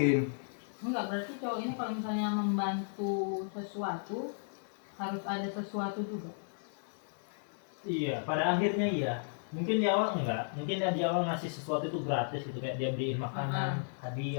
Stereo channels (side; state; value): right; silent; 55 dB below the other